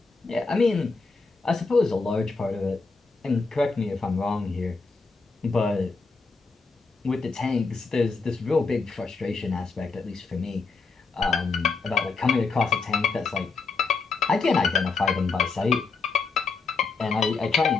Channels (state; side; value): quieter; right; 4.4 dB